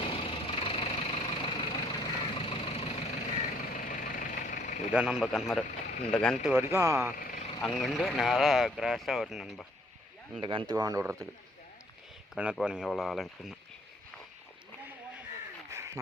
இதுதான் நம்ம கிணறு. இந்த கிணத்து வரைக்கும் அங்கேருந்து நேராக கிராஸாக வரும் நண்பா. இந்த கிணத்துக்கு வாண்டு விடுறதுக்கு. கிணறு பாருங்க எவ்வளோ ஆழம் இருக்குன்னு.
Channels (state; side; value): normal; both; correlation 0.63